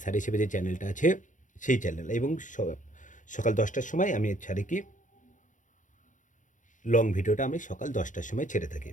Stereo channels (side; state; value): right; late; 0.37 ms